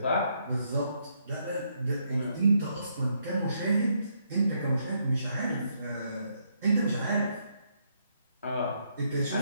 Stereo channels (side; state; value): both; inverted; correlation -0.75